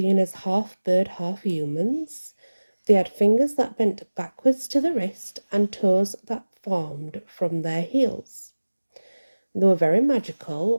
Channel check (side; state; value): both; inverted; correlation -1.00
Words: as half bird, half humans. They had fingers that bent backwards to the wrist and toes that formed from their heels. They were very